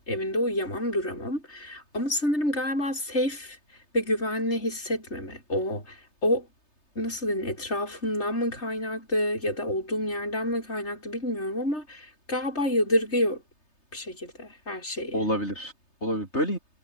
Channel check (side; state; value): right; late; 3.3 ms